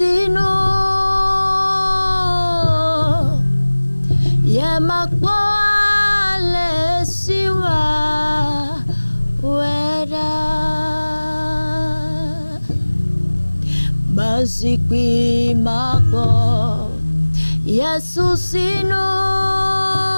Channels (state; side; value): inverted; both; correlation -1.00